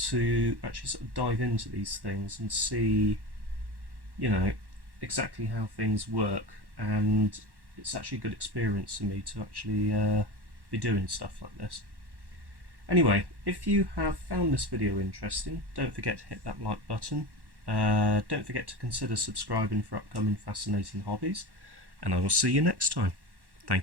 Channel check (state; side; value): late; left; 1.1 ms